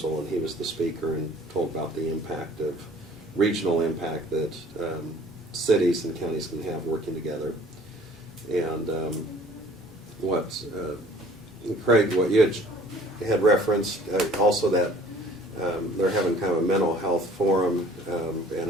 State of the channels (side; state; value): both; normal; correlation 0.52